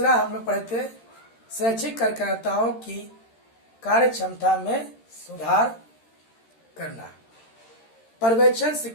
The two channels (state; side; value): late; right; 13 ms